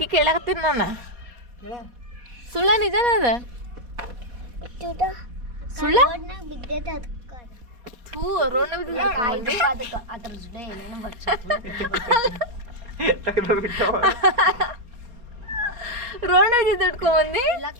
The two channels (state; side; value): late; left; 4.1 ms